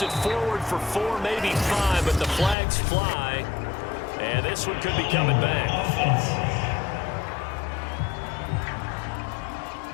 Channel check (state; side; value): drops out; right; at 2.6 s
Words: it forward for 4, maybe 5, but the flags fly. And this one could be coming back.